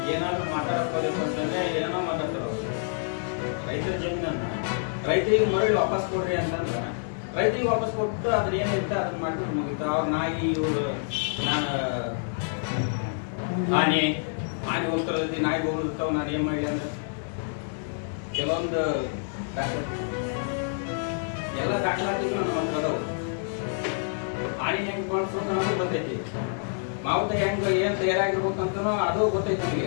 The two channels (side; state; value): right; silent; digital silence